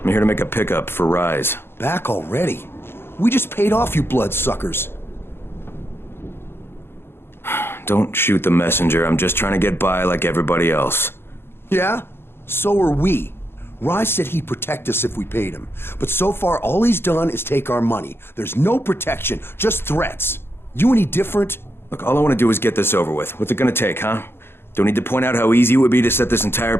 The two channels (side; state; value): right; late; 0.11 ms